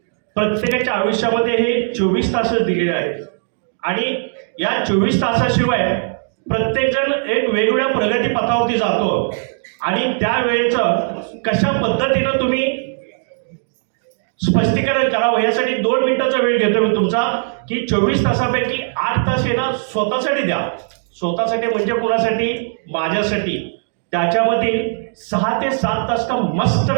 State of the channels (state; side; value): silent; left; digital silence